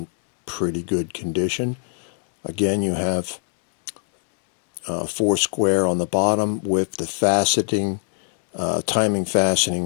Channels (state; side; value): silent; right; 64 dB below the other